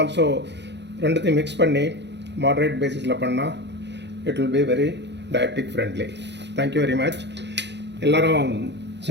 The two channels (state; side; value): late; left; 0.50 ms